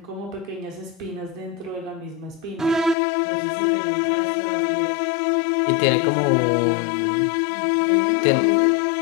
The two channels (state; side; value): drops out; right; at 3.0 s